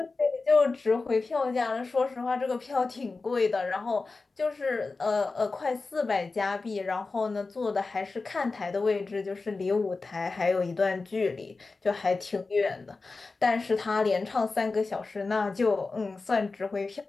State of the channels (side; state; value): right; quieter; 3.9 dB